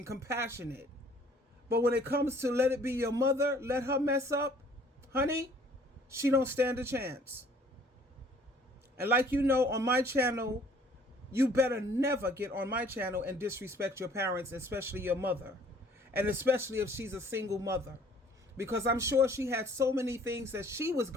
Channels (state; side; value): normal; both; correlation 0.56